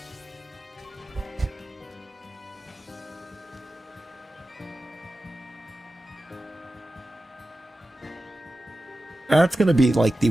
That's gonna be like the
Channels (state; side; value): normal; both; correlation 0.94